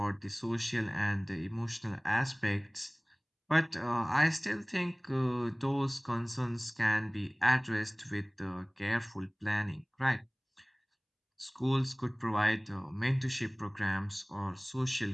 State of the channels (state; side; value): identical; both; correlation 1.00